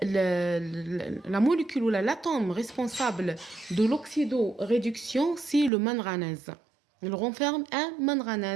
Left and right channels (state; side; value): drops out; left; at 5.7 s